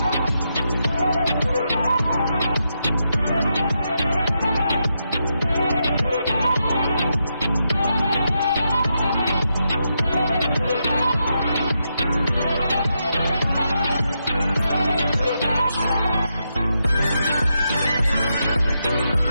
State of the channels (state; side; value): inverted; both; correlation -0.83